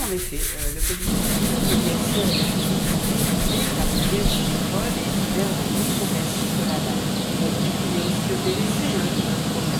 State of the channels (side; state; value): both; identical; correlation 1.00